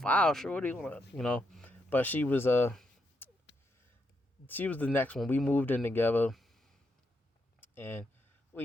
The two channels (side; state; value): both; normal; correlation 0.80